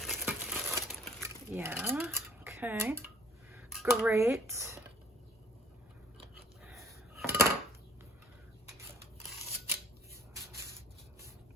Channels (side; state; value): both; normal; correlation 0.51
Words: Yeah, okay. Great.